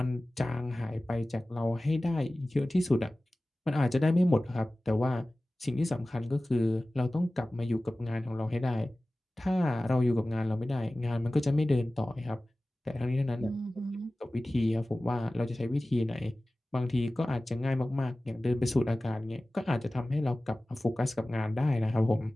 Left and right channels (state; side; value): normal; both; correlation 0.97